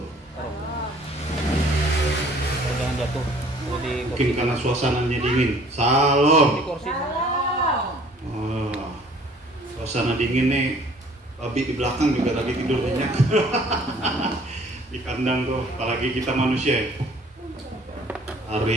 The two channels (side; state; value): both; normal; correlation 0.55